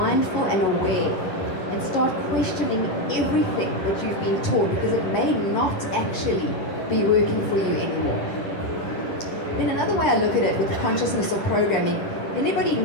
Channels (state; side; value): late; right; 10 ms